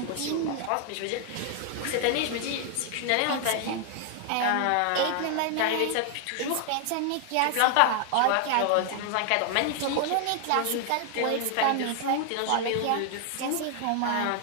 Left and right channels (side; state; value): both; different; correlation 0.00